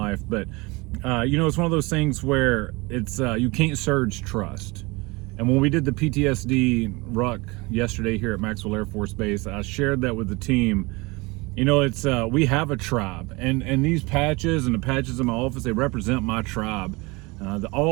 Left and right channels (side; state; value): left; quieter; 25.0 dB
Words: But it's one of those things where it's you can't surge trust. And when we did the PTSD ruck yesterday here at Maxwell Air Force Base, I shared that with the team. It's we have a tribe, and these patches and the patches in my office, they represent my tribe.